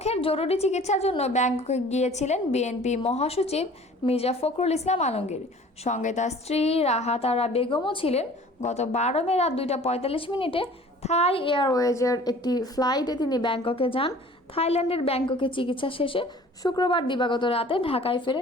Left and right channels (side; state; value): both; normal; correlation 0.48